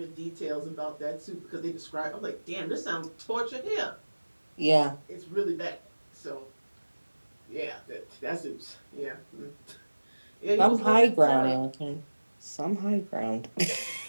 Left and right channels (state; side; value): inverted; both; correlation -1.00